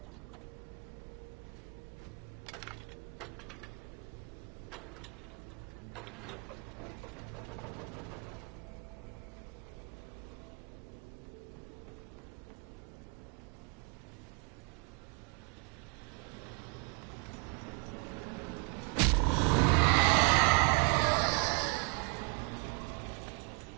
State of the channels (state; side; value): quieter; left; 34.9 dB